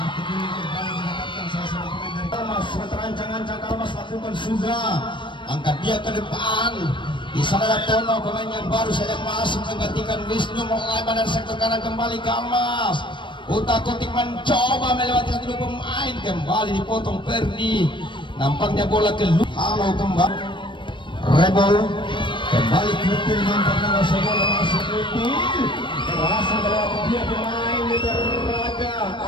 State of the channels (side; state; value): right; late; 0.23 ms